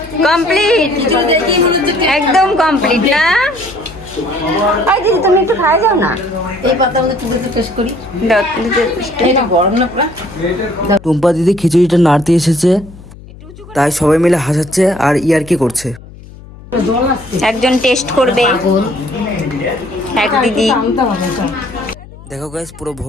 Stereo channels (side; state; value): left; noise; hum, 19 dB below the sound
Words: কমপ্লিট, একদম কমপ্লিট না? এই দিদি তুমি একটু খাই যাও না। এই পাতা আমাদের তুলে টেস্ট করি। এটা গরম না পুরা? টুম্পা দিদি খিচুড়িটা নাড়তে এসেছে, তাই সবাই মিলে হাসাচ্ছে আর ইয়ার্কি করছে। একজন টেস্ট করবে, এক দিদি। দেখো গাইস, পুরো